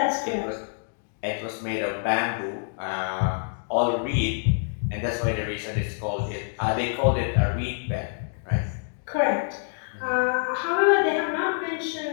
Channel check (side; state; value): right; silent; digital silence